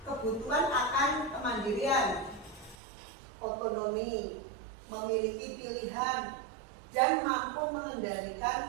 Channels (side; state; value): left; drops out; at 2.8 s